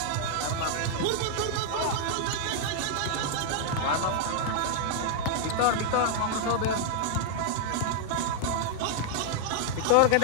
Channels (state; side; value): different; both; correlation -0.01